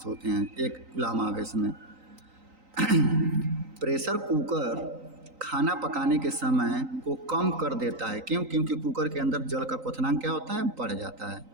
होते हैं एक कूलम आवेश में। प्रेशर कुकर खाना पकाने के समय को कम कर देता है, क्यों, क्योंकि कुकर के अंदर जल का क्वथनांक क्या होता है, बढ़ जाता है।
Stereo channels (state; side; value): late; left; 3.9 ms